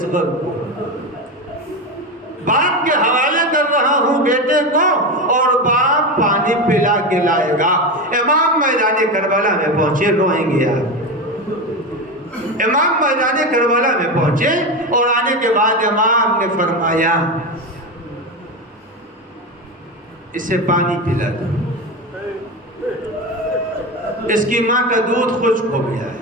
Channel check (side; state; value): both; normal; correlation 0.19